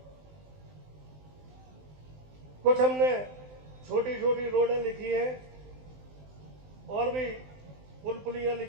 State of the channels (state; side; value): late; left; 20 ms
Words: कुछ हमने छोटी छोटी रोडें लिखी हैं और भी पुल पुलियां